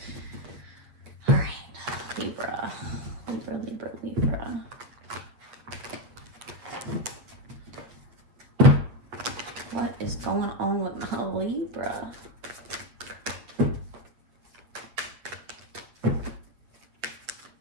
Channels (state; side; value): late; left; 8.3 ms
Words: All right, Libra, Libra, Libra, Libra. What is going on with my Libra?